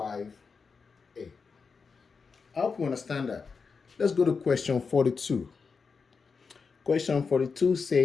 8. I hope you understand that. Let's go to question 42. Question 42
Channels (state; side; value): quieter; right; 5.2 dB